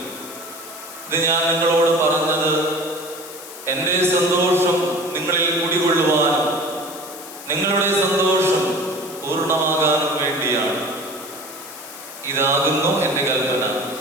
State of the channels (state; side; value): noise; left; hiss, 14 dB below the sound